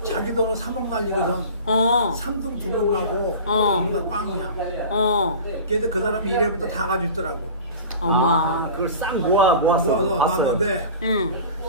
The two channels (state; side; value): inverted; both; correlation -0.37